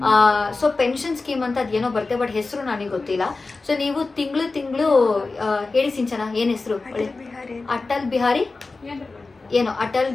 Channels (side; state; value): right; quieter; 3.7 dB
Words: ಸೊ ಪೆನ್ಷನ್ ಸ್ಕೀಮ್ ಅಂತ ಅದೇನೋ ಬರುತ್ತೆ, ಬಟ್ ಹೆಸರು ನನಗೆ ಗೊತ್ತಿಲ್ಲ. ಸೊ ನೀವು ತಿಂಗಳು ಹೇಳಿ ಸಿಂಚನ, ಏನು ಹೆಸರು? ಅಟಲ್